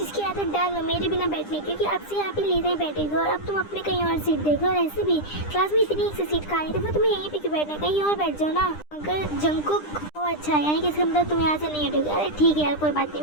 की आदत डाल लो मेरे बिना बैठने, क्योंकि अब से यहाँ पे लीजा ही बैठेगी, और अब तुम अपने कहीं और सीट देखो। और ऐसे भी क्लास में इतनी एक से सीट खाली, तो फिर तुम्हें यहीं पे क्यों बैठना है, कहीं और बैठ जाओ ना। अगर जंगकुक अच्छा यानी कि इसका मतलब तुम यहाँ से नहीं हटोगे। अरे ठीक है यार कोई बात नहीं,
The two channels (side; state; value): right; late; 9.9 ms